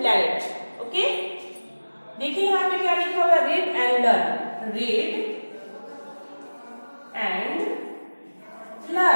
ओके, देखिए यहाँ पे क्या लिखा हुआ है, read and learn. Read and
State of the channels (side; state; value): both; inverted; correlation -1.00